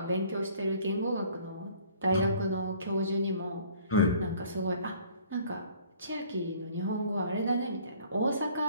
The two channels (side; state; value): both; inverted; correlation -0.54